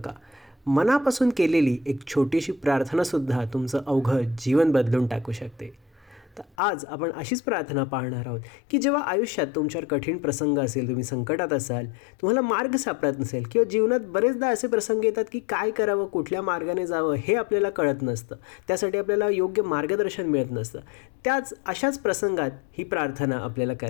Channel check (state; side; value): drops out; right; at 6.6 s